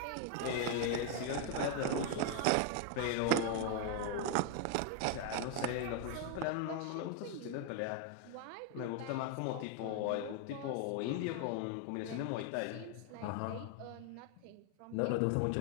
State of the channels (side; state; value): both; different; correlation 0.00